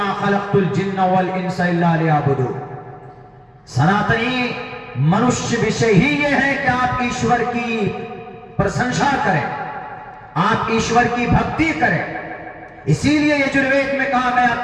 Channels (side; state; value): both; identical; correlation 1.00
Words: خلقت الجن والانس الا لیعبدون۔ سناتنی منشیہ وشے ہی یہ ہے کہ آپ ایشور کی پرشنسا کریں، آپ ایشور کی بھکتی کریں۔ اسی لیے یجروید میں کہا گیا،